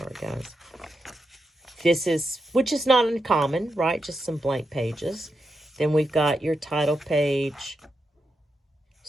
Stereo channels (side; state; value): both; normal; correlation 0.86